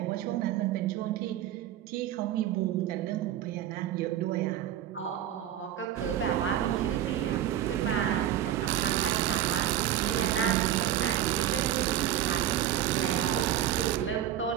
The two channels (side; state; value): left; quieter; 11.6 dB